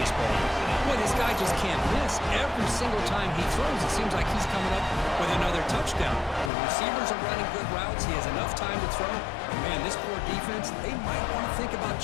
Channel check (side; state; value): right; drops out; at 6.5 s